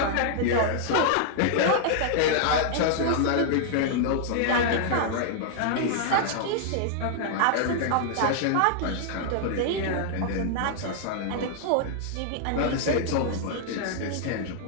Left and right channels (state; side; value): different; both; correlation -0.01